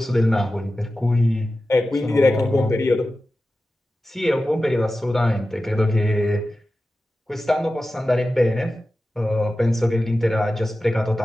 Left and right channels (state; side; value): normal; both; correlation 0.94